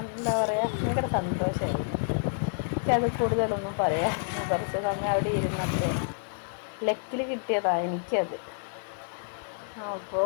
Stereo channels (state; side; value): silent; right; digital silence